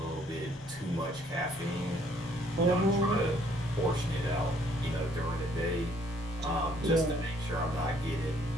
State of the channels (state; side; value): normal; both; correlation 0.64